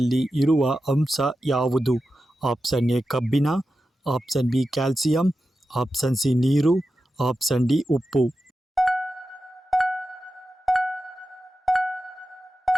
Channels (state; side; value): normal; both; correlation 0.91